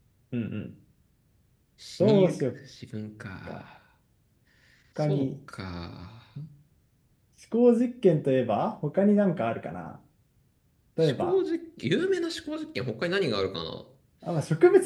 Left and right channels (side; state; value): both; identical; correlation 1.00